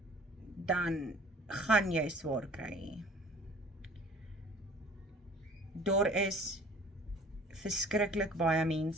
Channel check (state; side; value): normal; both; correlation 0.49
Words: dan gaan jy swaar kry. Daar is verskriklik baie